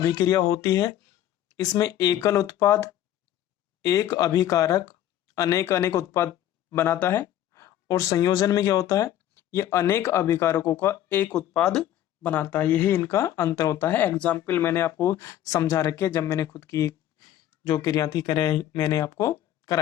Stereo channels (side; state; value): right; quieter; 12.0 dB